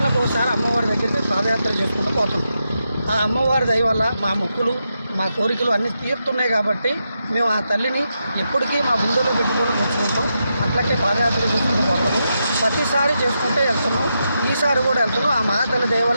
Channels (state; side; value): inverted; both; correlation -0.85